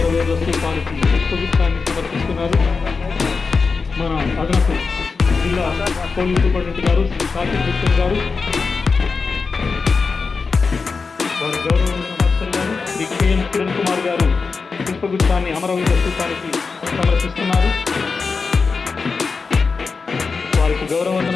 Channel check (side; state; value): right; quieter; 4.7 dB